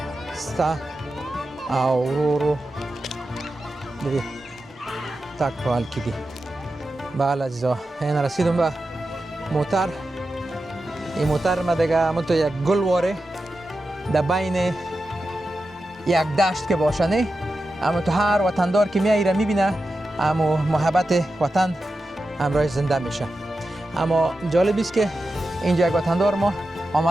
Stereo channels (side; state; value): both; normal; correlation 0.91